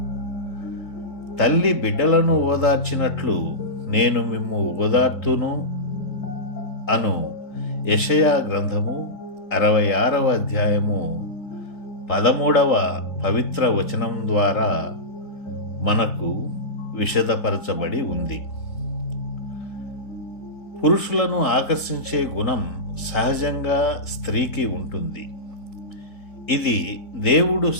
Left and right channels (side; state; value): right; late; 3.8 ms